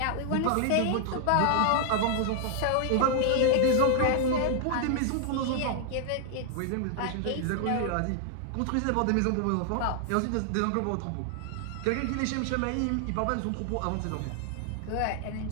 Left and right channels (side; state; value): both; different; correlation 0.00